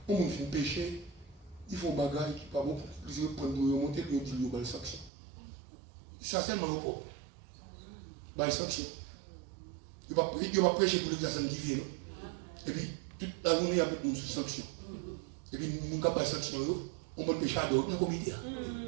On fait péché. Il faut bagaille qui pas bon. Ils vont prendre le remonter, ils vont dire, il y a une sanction. Ça, c'est le rapport. Bah, sanction. Il va prêcher pour l'exercice divin. Et puis, toute la journée, il y a beaucoup de sanctions. Et puis, nous avons des sanctions, on va pécher à d'autres, dans le comité.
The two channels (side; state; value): left; drops out; at 5.1 s